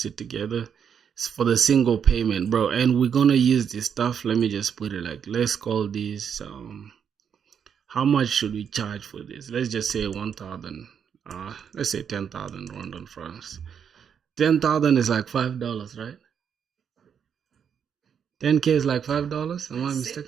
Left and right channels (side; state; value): left; quieter; 7.6 dB